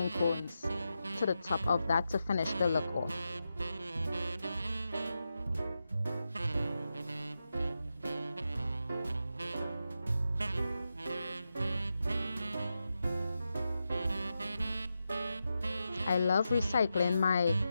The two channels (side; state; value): both; inverted; correlation -0.89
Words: cones to the top of that to finish the look off. I love recycling my